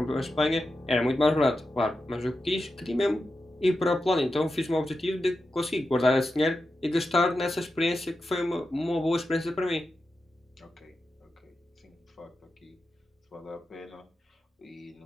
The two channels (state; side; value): normal; both; correlation 0.90